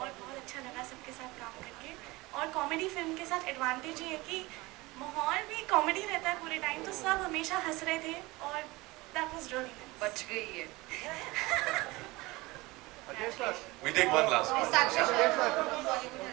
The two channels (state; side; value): quieter; left; 21.8 dB